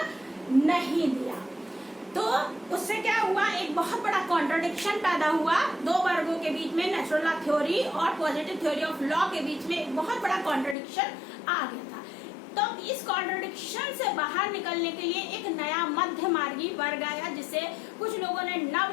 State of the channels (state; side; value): drops out; right; at 10.8 s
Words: नहीं दिया। तो उससे क्या हुआ, एक बहुत बड़ा कॉन्ट्रडिक्शन पैदा हुआ दो वर्गों के बीच में, नेचुरल लॉ थ्योरी और पॉजिटिव थ्योरी ऑफ लॉ के बीच में एक बहुत बड़ा कॉन्ट्रडिक्शन आ गया था। तो इस कॉन्ट्रडिक्शन से बाहर निकलने के लिए एक नया मध्य मार्गी वर्ग आया, जिसे कुछ लोगों ने